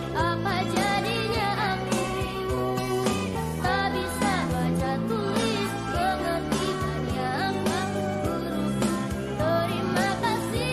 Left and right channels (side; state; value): both; identical; correlation 1.00